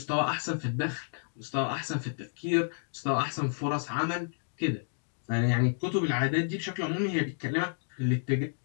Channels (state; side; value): silent; right; digital silence